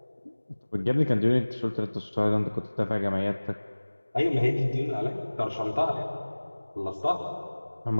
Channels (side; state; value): both; inverted; correlation -1.00